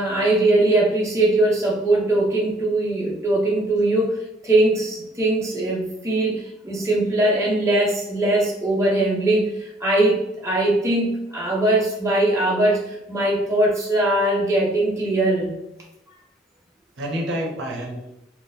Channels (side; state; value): both; normal; correlation 0.60